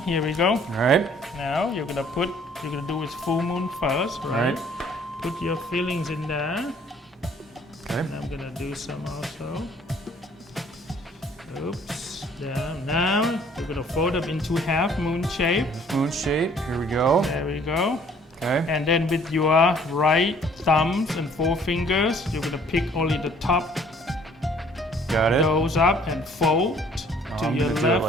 Here we go. All right. Now you're gonna do with full moon first, right? Put your fillings in there. Okay. And I'm gonna do some also. Oops. There. Now you're gonna fold them into half moon shape. Moon shape. Here we go. There we go. Okay. And then with your right thumbs and forefingers, you're gonna pick only the top. Got it. Those up and fold to I'm your gonna do it left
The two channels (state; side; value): normal; both; correlation 0.58